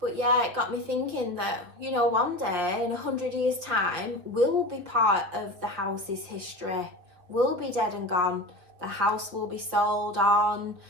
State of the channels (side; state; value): left; late; 5.7 ms